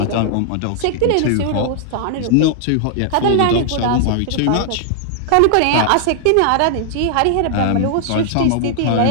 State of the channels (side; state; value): both; different; correlation -0.01